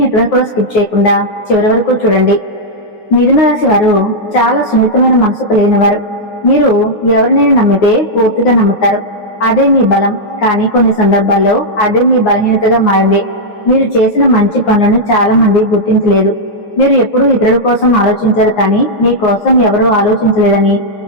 ఎక్కడ కూడా స్కిప్ చేయకుండా చివరి వరకు చూడండి. మిథున రాశి వారు చాలా సున్నితమైన మనసు కలిగిన వారు. మీరు ఎవరినైనా నమ్మితే పూర్తిగా నమ్ముతారు. అదే మీ బలం. కానీ కొన్ని సందర్భాల్లో అదే మీ బలహీనతగా మారింది. మీరు చేసిన మంచి పనులను చాలా మంది గుర్తించలేదు. మీరు ఎప్పుడూ ఇతరుల కోసం ఆలోచించారు, కానీ మీ కోసం ఎవరూ ఆలోచించలేదని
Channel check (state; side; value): late; right; 9.5 ms